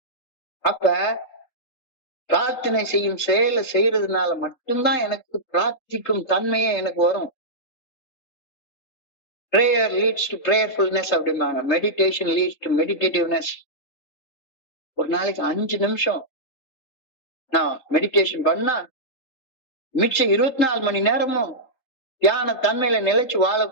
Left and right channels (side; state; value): right; late; 3.8 ms